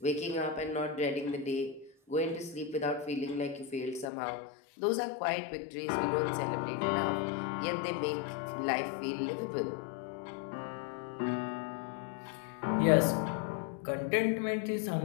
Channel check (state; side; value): drops out; right; at 4.0 s